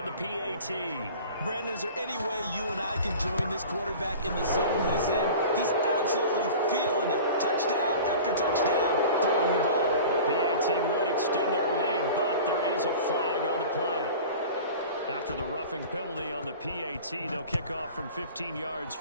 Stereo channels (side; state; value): both; inverted; correlation -0.39